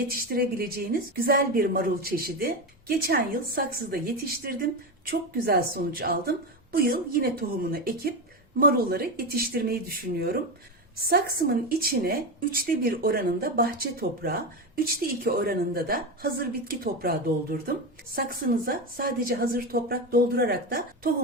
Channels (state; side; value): normal; both; correlation 0.17